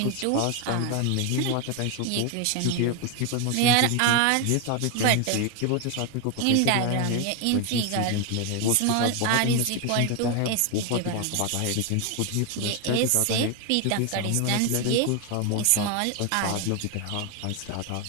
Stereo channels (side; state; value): both; different; correlation 0.01